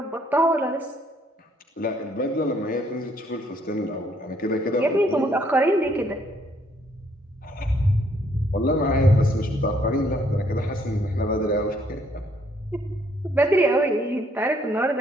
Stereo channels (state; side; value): normal; both; correlation 0.67